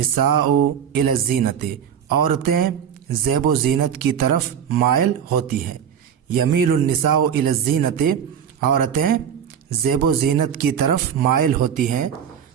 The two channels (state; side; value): quieter; left; 8.3 dB